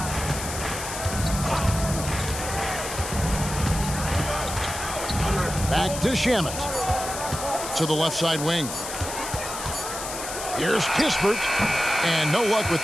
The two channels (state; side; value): noise; left; hiss, 7 dB below the sound